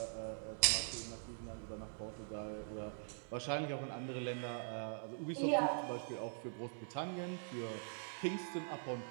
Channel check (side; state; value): left; silent; digital silence